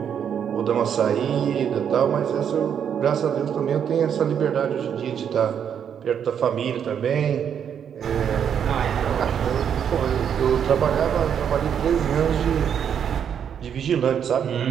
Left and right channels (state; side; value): quieter; left; 8.3 dB